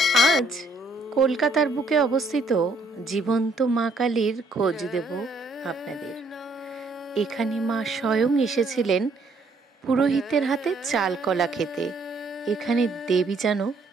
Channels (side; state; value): left; quieter; 3.1 dB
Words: আজ কলকাতার বুকে অবস্থিত জীবন্ত মা কালীর খোঁজ দেব আপনাদের। এখানে মা স্বয়ং এসেছিলেন পুরোহিতের হাতে চাল কলা খেতে। এখানে দেবী যেন